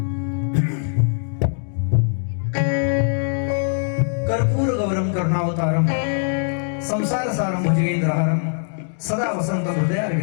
कर्पूर गौरम करुणावतारम संसार सारम भुजगेंद्रहारम सदा वसंत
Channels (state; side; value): silent; right; digital silence